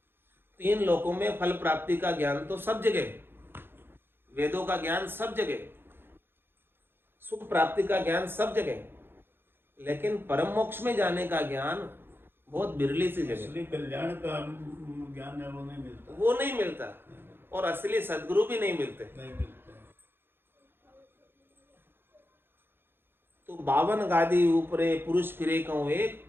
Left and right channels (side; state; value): left; late; 0.10 ms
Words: 3 लोकों में फल प्राप्ति का ज्ञान तो सब जगह, वेदों का ज्ञान सब जगह, सुख प्राप्ति का ज्ञान सब जगह, लेकिन परम मोक्ष में जाने का ज्ञान बहुत बिरली सी जगह। असली कल्याण का ज्ञान है, वो नहीं मिलता। वो नहीं मिलता, और असली सदगुरु भी नहीं मिलते। नहीं मिलता। तो 52 गादी ऊपरे पुरुष फिरे कहूं एक,